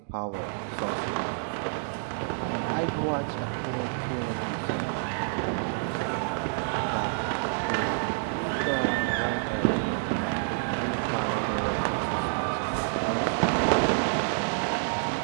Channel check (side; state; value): left; silent; digital silence